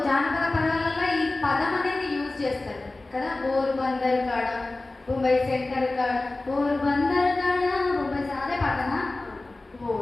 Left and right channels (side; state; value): right; quieter; 3.0 dB